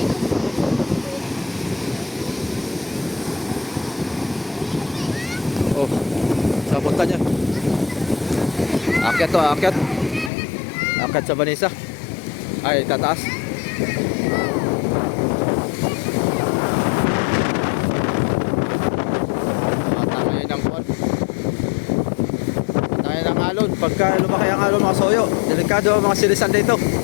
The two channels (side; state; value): right; drops out; at 10.3 s